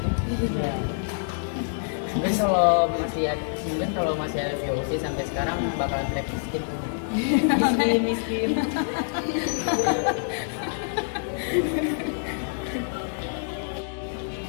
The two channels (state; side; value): silent; right; digital silence